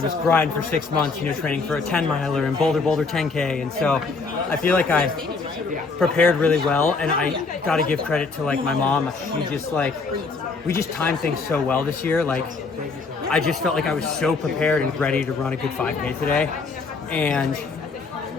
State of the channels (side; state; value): right; quieter; 4.3 dB